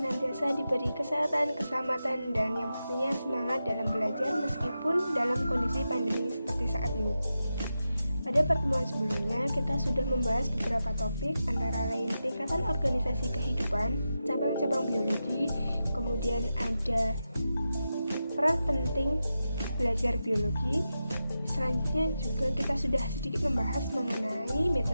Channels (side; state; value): both; inverted; correlation -0.90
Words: diberi kesehatan, keselamatan, dan yang pastinya semangat dalam belajar meskipun dalam kondisi pandemi seperti saat ini. Pada pertemuan sebelumnya, kita sudah membahas beberapa topik, antara lain tingkatan organisasi kehidupan, cabang-cabang biologi, kemudian ada peran penting belajar biologi. Selanjutnya juga kita sudah sedikit membahas mengenai